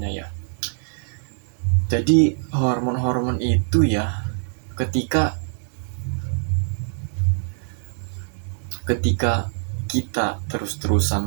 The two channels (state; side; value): silent; left; digital silence